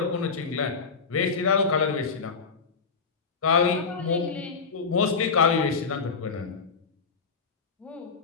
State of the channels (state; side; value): quieter; right; 5.0 dB